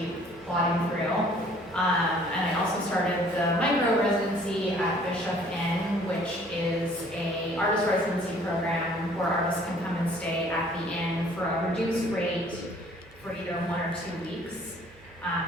plodding through. And I also started the micro residency at Bischoff Inn, which is a artist residency program where artists can come and stay at the inn for a reduced rate for either 1 or 2 weeks.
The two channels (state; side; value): noise; right; hum, 26 dB below the sound